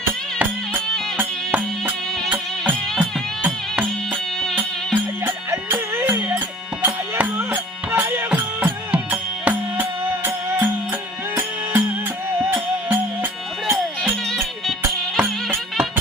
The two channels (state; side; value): normal; both; correlation 0.47